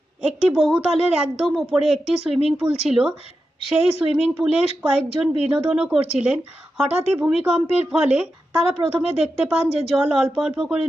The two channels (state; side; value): normal; both; correlation 0.90